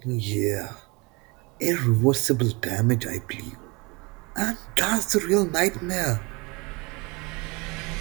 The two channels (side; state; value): left; quieter; 27.1 dB